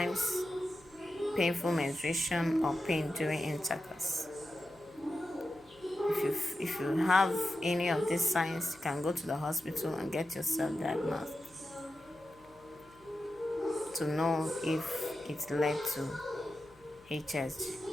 painful menstruation or pain during intercourse. If you have any of these signs, you can go to the hospital and get yourself diagnosed to know if it led to HSG.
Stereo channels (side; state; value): left; noise; hum, 28 dB below the sound